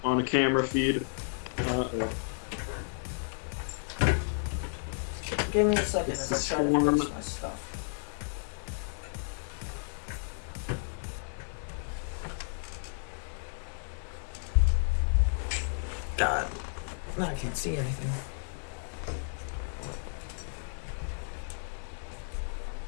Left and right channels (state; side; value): silent; right; digital silence